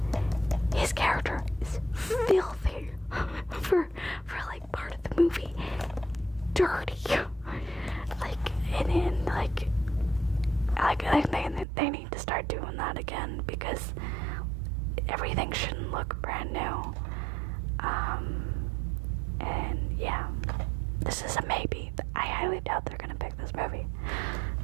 his character is filthy for like part of the movie. Dirty. Like, and they need to start doing that again, because everything shouldn't look brand new. And yeah, this is a maybe. I highly doubt they're gonna pick this movie,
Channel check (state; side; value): drops out; left; at 11.7 s